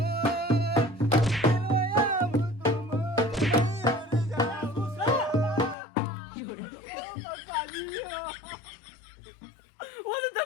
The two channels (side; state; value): right; drops out; at 5.8 s